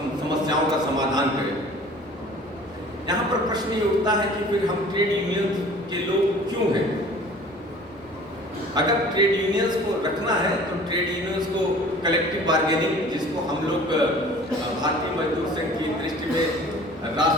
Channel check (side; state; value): both; normal; correlation 0.47